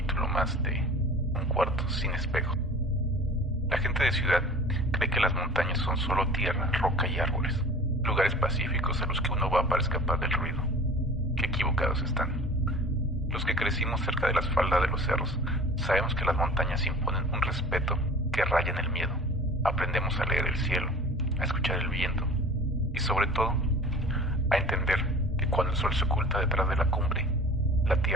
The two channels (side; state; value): both; normal; correlation 0.42